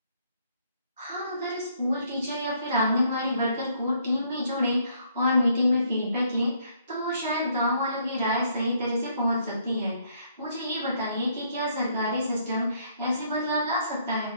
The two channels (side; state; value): both; inverted; correlation -0.68